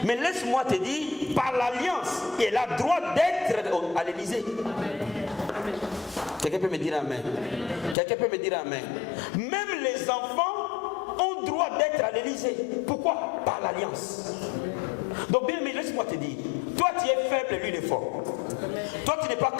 Mais laisse-moi te dire, par l'alliance, elle a droit d'être à l'Élysée. Quelqu'un peut me dire amen? Quelqu'un peut me dire amen? Même les enfants ont droit d'être à l'Élysée. Pourquoi? Par l'alliance. Donc bien, mais laisse-moi te dire, toi tu es faible, lui il est fort. Toi tu n'es pas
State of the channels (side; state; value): right; drops out; at 8.0 s